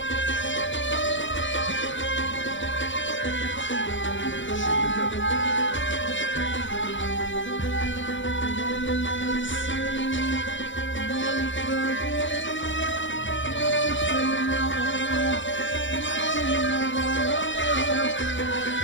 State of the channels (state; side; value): late; right; 0.55 ms